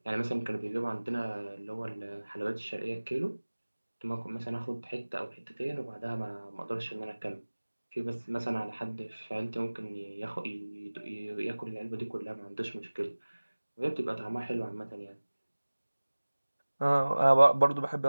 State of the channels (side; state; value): both; inverted; correlation -1.00